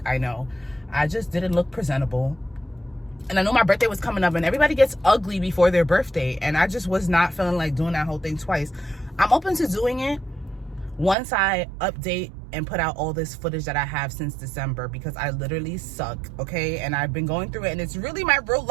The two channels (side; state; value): left; drops out; at 11.2 s